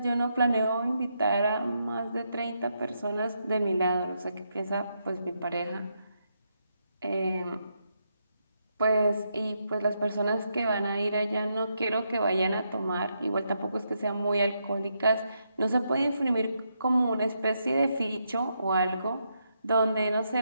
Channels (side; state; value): both; inverted; correlation -0.81